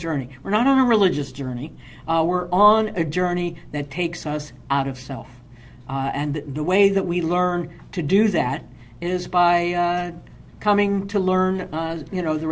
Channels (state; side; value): identical; both; correlation 1.00